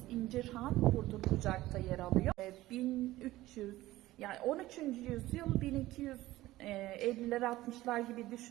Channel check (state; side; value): quieter; left; 16.8 dB